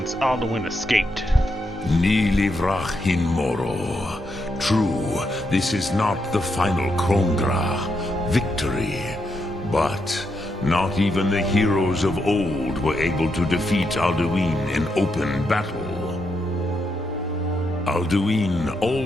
Alduin escaped. Ni livrach hin moro. True, this is not the final Krongra victory, but not even the heroes of old were able to defeat Alduin in open battle. Alduin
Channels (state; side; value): normal; both; correlation 0.81